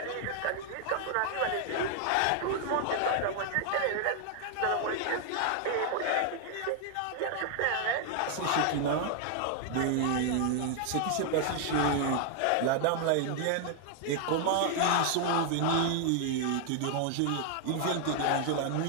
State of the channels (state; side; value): different; both; correlation 0.00